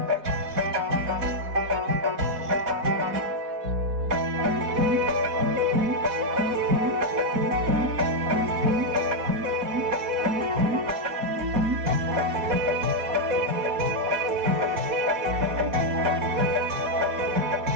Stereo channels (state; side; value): late; left; 4.1 ms